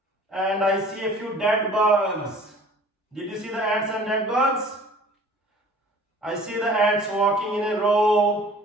And I see a few dead bugs. Did you see the ants and dead bugs? I see the ants walking in a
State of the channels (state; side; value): normal; both; correlation 0.48